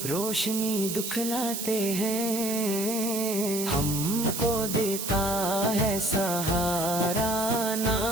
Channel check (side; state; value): right; noise; hiss, 4 dB below the sound